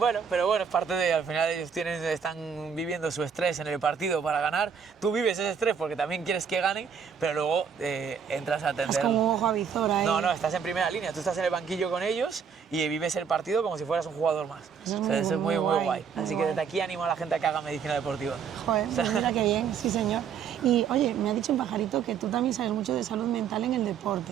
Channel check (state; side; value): quieter; left; 6.9 dB